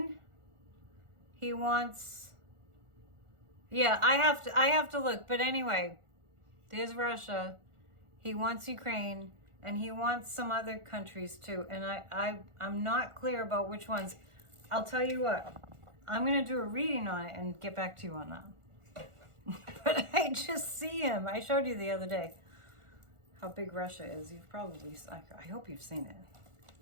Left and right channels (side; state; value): left; late; 1.4 ms